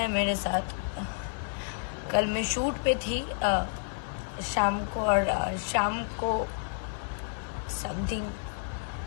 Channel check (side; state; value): right; silent; 58 dB below the other